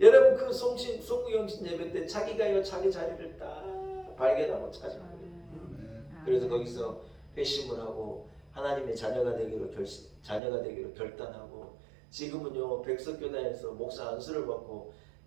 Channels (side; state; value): left; drops out; at 10.4 s